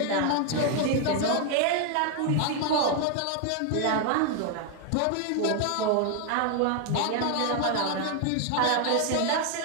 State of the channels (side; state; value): both; different; correlation 0.00